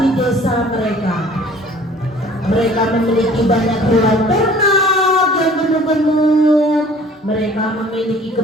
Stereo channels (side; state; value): both; normal; correlation 0.51